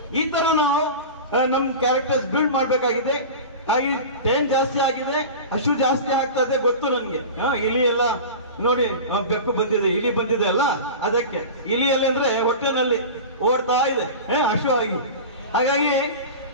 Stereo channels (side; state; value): both; inverted; correlation -0.31